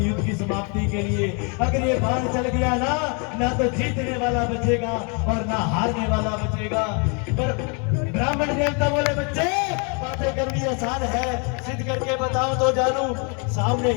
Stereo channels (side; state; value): right; quieter; 36.0 dB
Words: युद्ध की समाप्ति के लिए। अगर ये बाण चल गया ना तो जीतने वाला बचेगा और ना हारने वाला बचेगा। पर ब्राह्मण देवता बोले, बच्चे बातें करनी आसान है, सिद्ध करके बताओ तो जानू। सामने